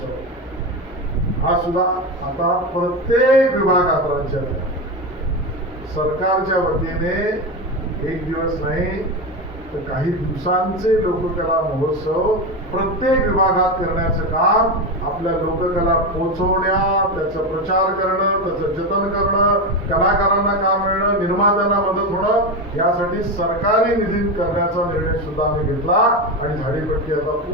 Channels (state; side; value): normal; both; correlation 0.16